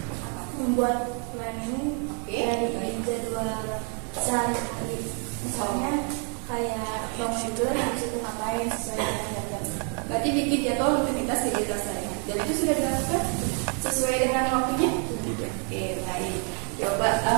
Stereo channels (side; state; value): left; quieter; 39.7 dB